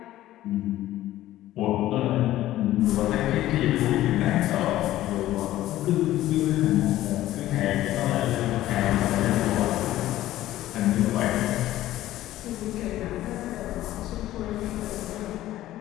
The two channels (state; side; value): quieter; right; 14.6 dB